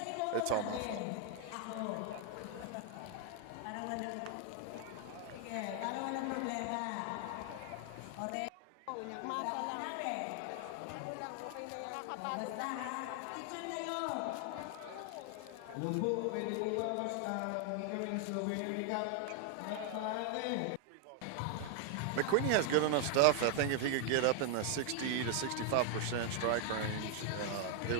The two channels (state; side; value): different; both; correlation 0.00